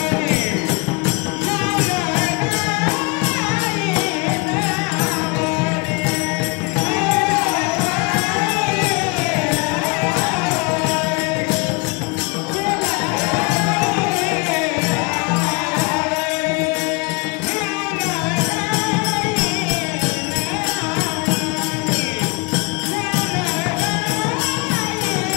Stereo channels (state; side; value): quieter; right; 28.9 dB